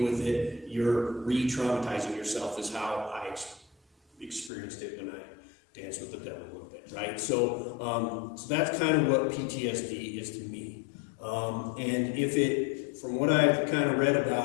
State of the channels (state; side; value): drops out; right; at 4.5 s